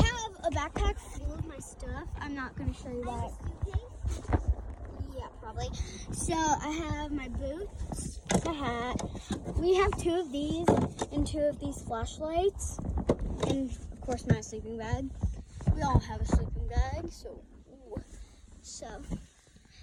a backpack full of my stuff. I'm not gonna show you that. Yeah, probably. So I have my boots, my hat. We have two of these and two of these flashlights, and of course my sleeping bag. We all have a sleeping bag, so. Ooh. So.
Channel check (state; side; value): identical; both; correlation 1.00